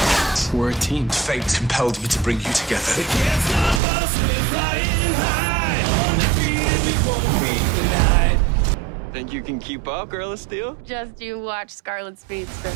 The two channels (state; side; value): drops out; left; at 3.8 s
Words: We're a team. Fate compelled me to bring you together. Think you can keep up, Girl of Steel? Just you watch Scarlet Speedster.